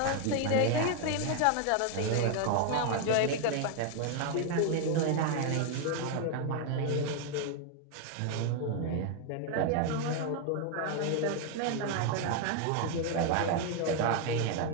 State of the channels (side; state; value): both; different; correlation 0.01